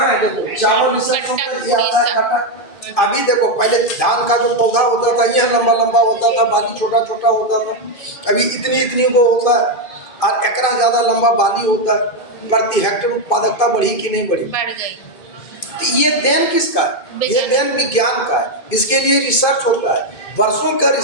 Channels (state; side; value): late; right; 2.5 ms